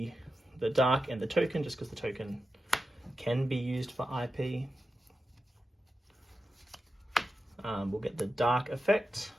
Dark and the token, just because the token can be used for IP. We'll get the Dark effect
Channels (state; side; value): normal; both; correlation 0.91